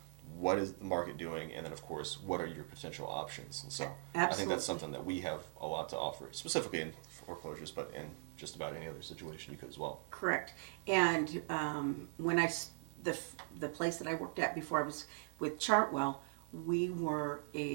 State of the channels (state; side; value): silent; left; 51 dB below the other